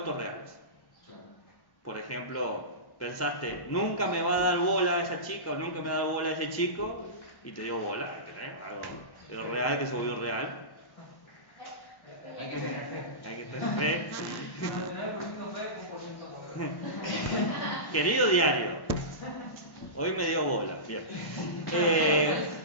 reales. Claro. Por ejemplo, pensaste, nunca me va a dar bola a esa chica o nunca me va a dar bola a ese chico, y te dio bola, ¿entendés? Algo real que se volvió real. Hay que tener fe. Hay que tener fe. 99% fe, 1% no. Querido diario, hoy me dio bola. Bien.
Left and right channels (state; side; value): late; right; 1.1 ms